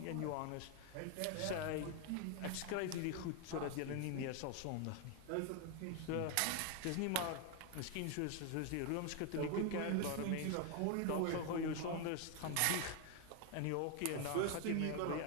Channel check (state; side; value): different; both; correlation 0.01